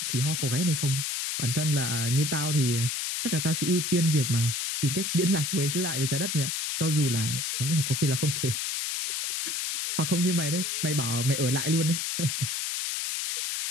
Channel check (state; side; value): noise; left; hiss, 1 dB below the sound